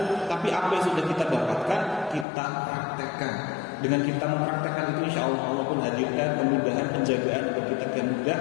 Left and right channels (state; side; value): drops out; right; at 2.2 s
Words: tapi apa yang sudah kita dapatkan kita praktekkan. Dengan kita mempraktekkan itu, insya Allah Allah pun hadirkan kemudahan penjagaan agar kita mudah